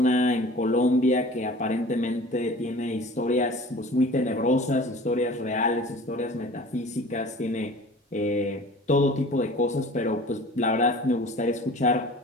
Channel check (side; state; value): both; normal; correlation 0.43